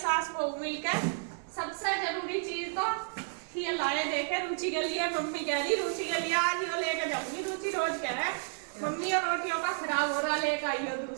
बहू मिलकर। सबसे जरूरी चीज तो ये लाए देखे रुचि के लिए। मम्मी कह रही रुचि के लिए आज यो लेके जाऊंगी। रुचि रोज कह रहा है मम्मी और रोटियों का खराब हो रहा, लेकर आई हो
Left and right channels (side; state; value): left; silent; 57 dB below the other